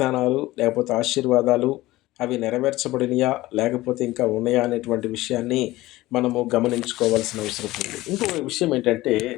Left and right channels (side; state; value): right; quieter; 17.9 dB